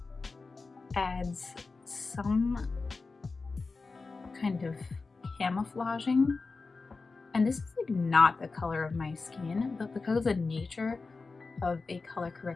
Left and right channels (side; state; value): right; quieter; 4.0 dB